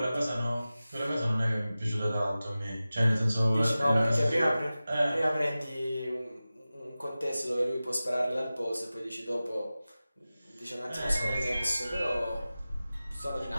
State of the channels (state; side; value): inverted; both; correlation -0.96